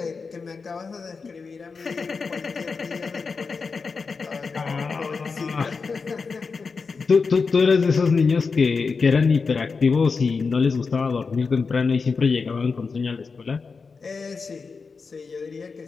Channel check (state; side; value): quieter; right; 4.8 dB